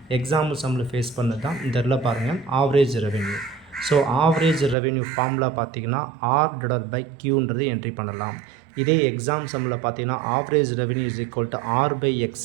எக்ஸாம்பிள் சம்மில் ஃபேஸ் பண்ணது தான் இந்த இடத்துல பாருங்கள், average revenue. So average revenue formula பார்த்தீங்கன்னா ஆர் டிவைடட் பை கியூன்றது என்ட்ரி பண்ணலாம். இதே எக்ஸாம் சம்மில் பார்த்தீங்கன்னா average revenue is equal to R by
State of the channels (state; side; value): drops out; left; at 4.8 s